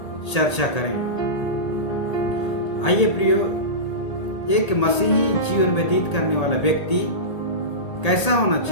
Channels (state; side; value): late; right; 1.8 ms